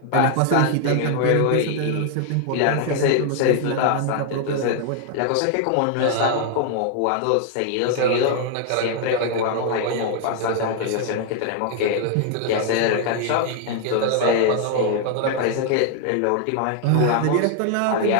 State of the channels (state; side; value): different; both; correlation 0.00